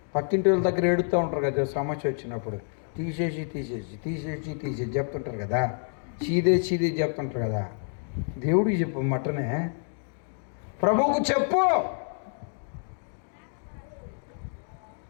పక్కింటి వాళ్ళ దగ్గర ఏడుతూ ఉంటారు కదా సమస్య వచ్చినప్పుడు, తీసేసి చెప్తుంటారు కదా, చీదే చెప్తుంటారు కదా. దేవుడికి చెప్పు, మటనే ప్రభువుకు చెప్పు.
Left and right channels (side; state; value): right; silent; 59 dB below the other